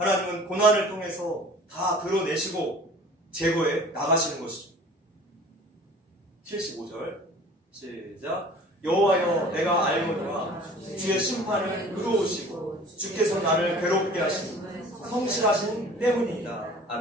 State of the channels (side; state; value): both; normal; correlation 0.46